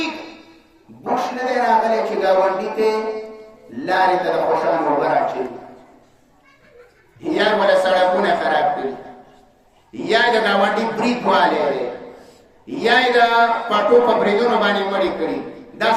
بوش نه دی راغلی چې ګاونډي ته لارې ته د خوشانو اوبه راچوي یا ولا سړکونه خراب کړي یا د ګاونډي برید والی دی یا یې د پټو په بریدونو باندې مړې کړي دا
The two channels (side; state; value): both; identical; correlation 1.00